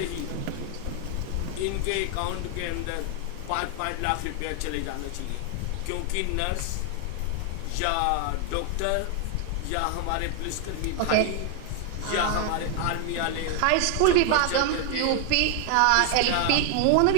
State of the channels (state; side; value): different; both; correlation 0.00